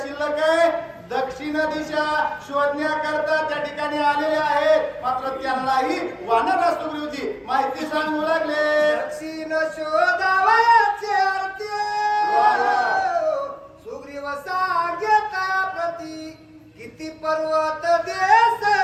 शिल्लक आहे? दक्षिण दिशा शोधण्याकरता त्या ठिकाणी आलेले आहेत. मात्र त्यांनाही वानर सुग्रीवजी माहिती सांगू लागले. दक्षिण शोधावयाचे अर्थ सुग्रीव सांगेत प्रती. किती पर्वत देश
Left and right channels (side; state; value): both; identical; correlation 1.00